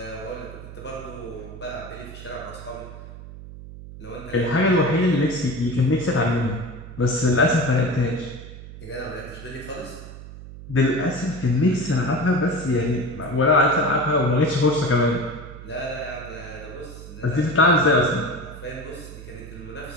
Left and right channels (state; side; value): noise; right; hum, 14 dB below the sound